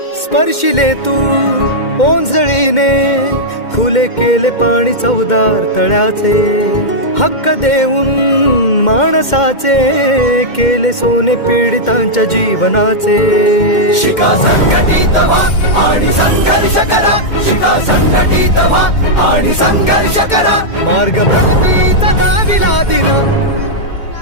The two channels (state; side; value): late; right; 2.1 ms